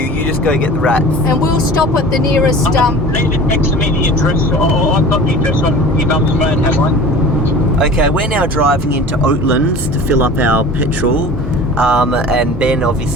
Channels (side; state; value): both; normal; correlation 0.39